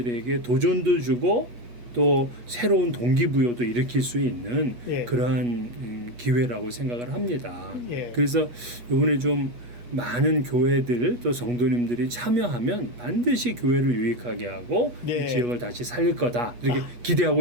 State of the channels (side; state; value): left; late; 8.3 ms